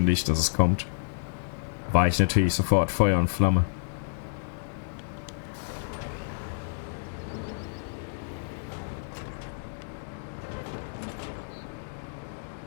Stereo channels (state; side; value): silent; right; digital silence